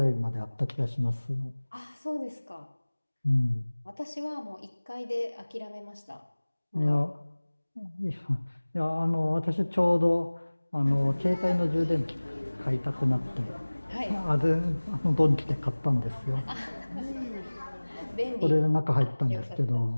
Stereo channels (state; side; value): inverted; both; correlation -1.00